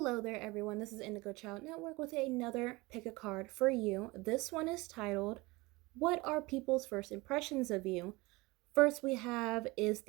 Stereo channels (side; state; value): left; quieter; 22.8 dB